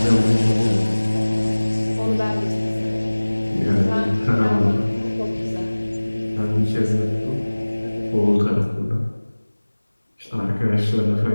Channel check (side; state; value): both; inverted; correlation -1.00